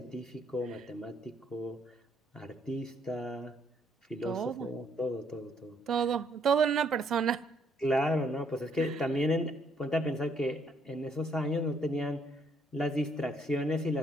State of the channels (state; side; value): normal; both; correlation 0.69